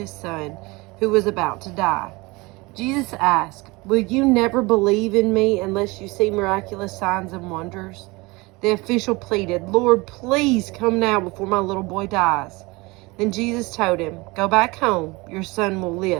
son, who was about to die. Jesus asked, "Will you never believe in me unless you see miraculous signs and wonders?" The official pleaded, "Lord, please come now before my little boy dies." Then Jesus told him, "Go back home, your son will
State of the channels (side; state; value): left; quieter; 24.0 dB